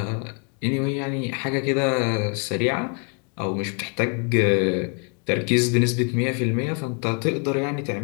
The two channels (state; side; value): quieter; right; 38.4 dB